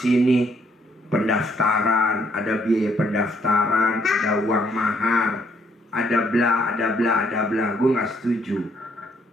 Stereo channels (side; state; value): both; normal; correlation 0.69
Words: pendaftaran, ada biaya pendaftaran, ada uang mahar, ada bla, ada bla, ada bla. Gue nggak setuju.